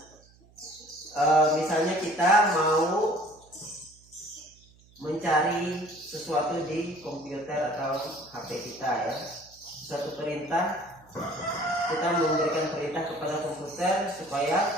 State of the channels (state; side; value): noise; right; hum, 28 dB below the sound